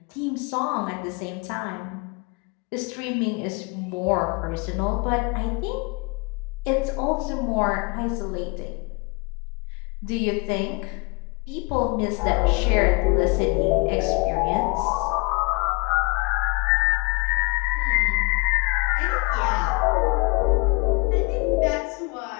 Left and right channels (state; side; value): quieter; right; 29.5 dB